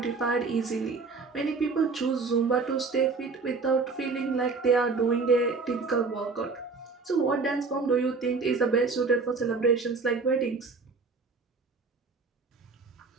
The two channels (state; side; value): quieter; left; 4.4 dB